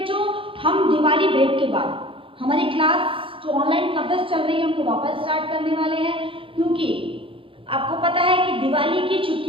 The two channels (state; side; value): late; left; 0.26 ms